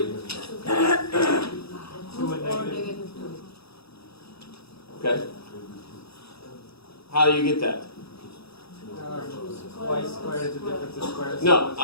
Okay. How do you get that? Y squared is the difference of squares. No,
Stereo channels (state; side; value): late; right; 0.77 ms